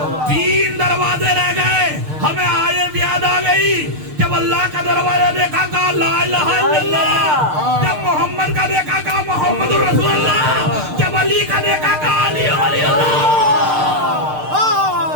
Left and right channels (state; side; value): late; left; 6.6 ms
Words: 3 دروازے رہ گئے. ہمیں آیت یاد آ گئی جب اللہ کا دروازہ دیکھا کہا لا الہ الا اللہ, جب محمد کا دیکھا کہا محمد رسول اللہ, جب علی کا دیکھا کہا علی ولی اللہ.